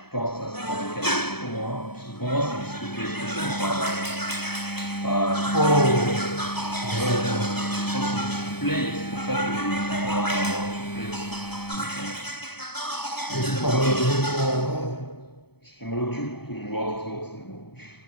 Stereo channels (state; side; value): late; right; 0.97 ms